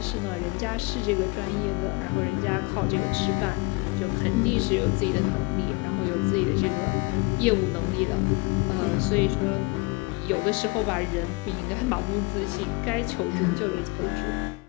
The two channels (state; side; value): quieter; right; 26.2 dB